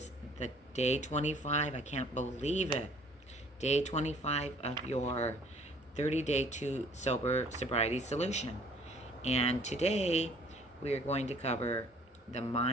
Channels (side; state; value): both; normal; correlation 0.56